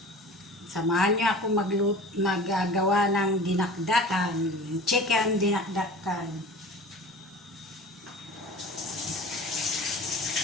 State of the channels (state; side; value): normal; both; correlation 0.40